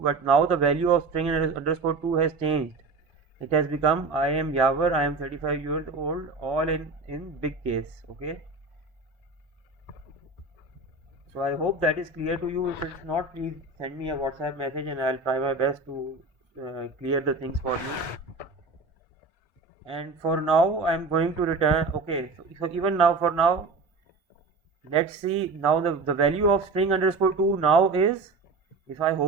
but now the value of string underscore 2 has changed. It has become I am Yaver, I am 35 years old, all in big case. Okay, so I hope that is clear to you. If it's not, please send me a WhatsApp message and I'll try my best to clear the things for you. And for now I'm going to return. Okay, so even now, for now, let's see. Now the value of string underscore 2 now is, if I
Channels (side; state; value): left; quieter; 3.8 dB